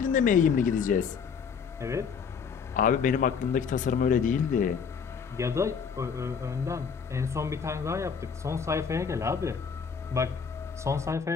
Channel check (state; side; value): quieter; right; 6.3 dB